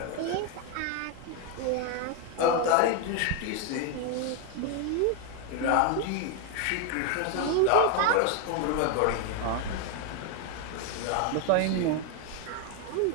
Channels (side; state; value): both; different; correlation 0.01